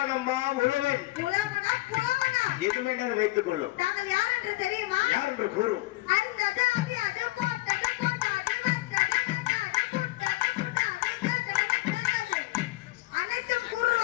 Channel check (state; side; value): quieter; right; 20.2 dB